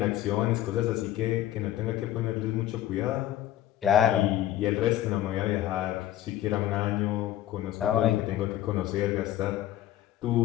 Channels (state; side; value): quieter; right; 13.2 dB